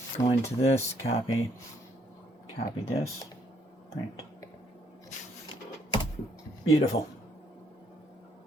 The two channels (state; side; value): normal; both; correlation 0.69